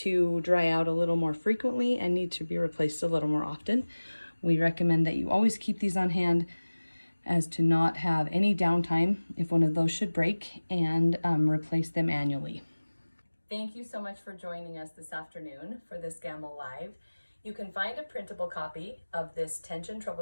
dry out a little more frequently and need to be replaced a little more often. We recommend that you always keep these on hand as to not have any downtime if one of those should break, and replace them annually. Thank you so much for joining us this afternoon for this Gammill Live. You can find a printable copy of this tension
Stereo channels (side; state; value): both; inverted; correlation -1.00